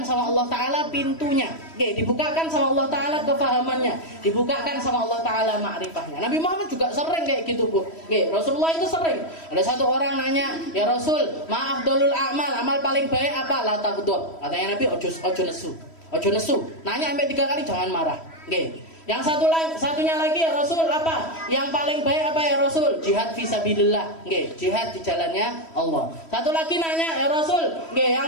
sama Allah Ta'ala pintunya, dibukakan sama Allah Ta'ala kefahamannya, dibukakan sama Allah Ta'ala ma'rifahnya. Nabi Muhammad juga sering kayak gitu, Bu. Rasulullah itu sering. Ada satu orang nanya, "Ya Rasul, ma afdalul a'mal, amal paling baik apa?" La taghdab. Katanya Nabi, ojo nesu. Nanya sampai 3 kali, jangan marah. Yang satunya lagi, ya Rasul, apa? Yang paling baik apa ya Rasul? Jihad fisabilillah. Jihad di jalannya Allah. Satu lagi nanya, ya Rasul, yang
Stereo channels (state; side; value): late; right; 3.1 ms